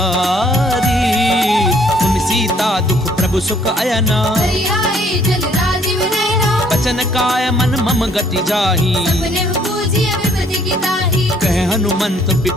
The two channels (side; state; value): both; normal; correlation 0.62